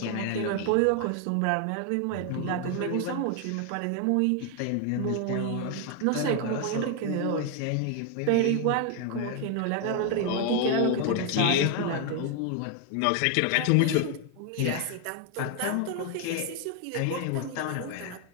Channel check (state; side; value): different; both; correlation 0.01